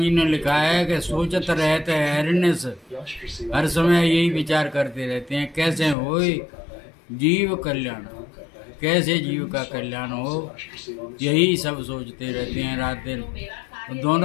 ने लिखा है कि सोचत रहते हरिनिश, हर समय यही विचार करते रहते हैं कैसे हो जीव कल्याण, कैसे जीव का कल्याण हो, यही सब सोचते रहते हैं रात दिन। तो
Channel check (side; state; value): right; drops out; at 6.0 s